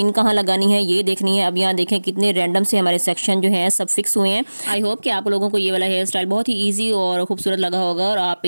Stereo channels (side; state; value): both; inverted; correlation -1.00